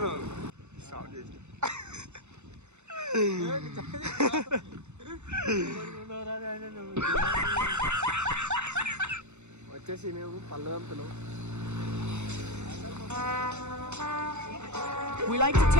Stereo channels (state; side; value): late; left; 0.83 ms